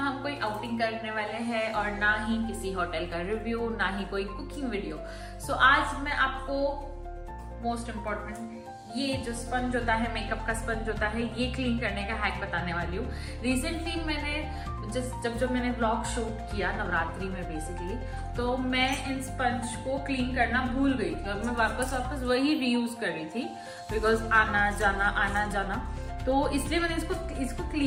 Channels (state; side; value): identical; both; correlation 1.00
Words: कोई आउटिंग करने वाले हैं और ना ही किसी होटल का रिव्यू, ना ही कोई कुकिंग वीडियो। सो आज मैं आपको मोस्ट इम्पोर्टेंट ये जो स्पंज होता है, मेकअप का स्पंज होता है, ये क्लीन करने का हैक बताने वाली हूँ। रिसेंटली मैंने जब मैंने व्लॉग शूट किया नवरात्रि में बेसिकली, तो मैं इन स्पंज को क्लीन करना भूल गई थी और मैं वापस वही रीयूज कर रही थी बिकॉज आना जाना, तो इसलिए मैंने इसको